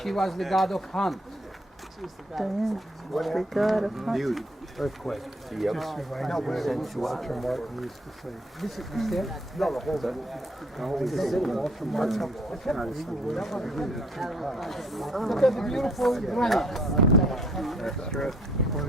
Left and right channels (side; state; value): both; normal; correlation 0.63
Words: She was the god of hunt. Diana, the god of hunt. Earthquake. Yep. Just reminds me of what Walter Martin used to say. This is there. Look at the beautiful granite. When